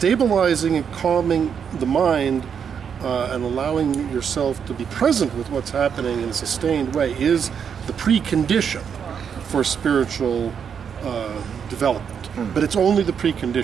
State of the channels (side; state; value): left; quieter; 7.3 dB